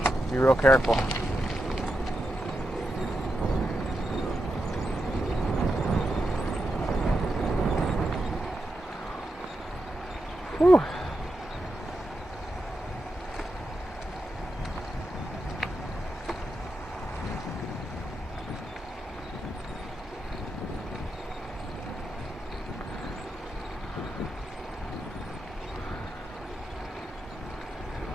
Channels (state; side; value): normal; both; correlation 0.87